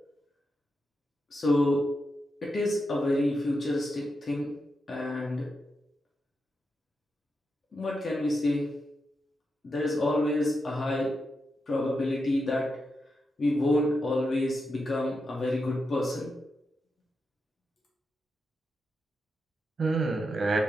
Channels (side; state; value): both; normal; correlation 0.86